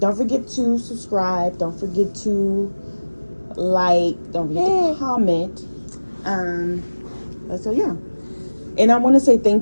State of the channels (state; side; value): inverted; both; correlation -1.00